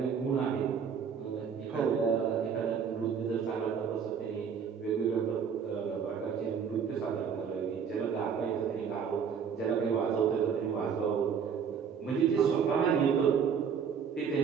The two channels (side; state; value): left; quieter; 6.9 dB